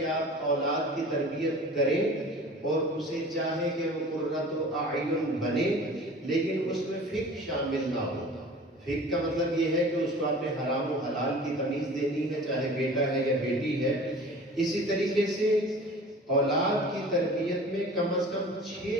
آپ اولاد کی تربیت کریں اور اسے چاہے کہ وہ قرۃ اعین بنے، لیکن اس میں فقہ شامل نہ ہو۔ فقہ کا مطلب یہ ہے کہ اس کو آپ نے حرام و حلال کی تمیز دینی ہے، چاہے بیٹا ہے یا بیٹی ہے۔ اسی طریقے سے اولاد کی تربیت میں کم از کم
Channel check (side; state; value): both; normal; correlation 0.42